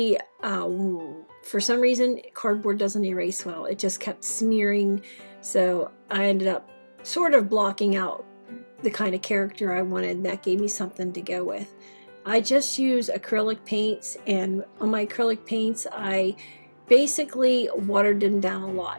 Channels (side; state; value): both; inverted; correlation -1.00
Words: for some reason, cardboard doesn't erase well. It just kept smearing. So I ended up sort of blocking out the kind of character I wanted, and that gave me something to go with. I just use acrylic paints, and on my acrylic paints, I basically watered them down a